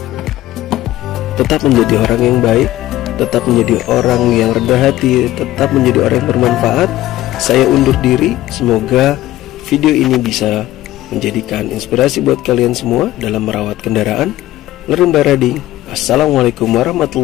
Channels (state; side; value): quieter; right; 15.2 dB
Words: Tetap menjadi orang yang baik, tetap menjadi orang yang rendah hati, tetap menjadi orang yang bermanfaat. Saya undur diri. Semoga video ini bisa menjadikan inspirasi buat kalian semua dalam merawat kendaraan. Lerumba Rading. Assalamualaikum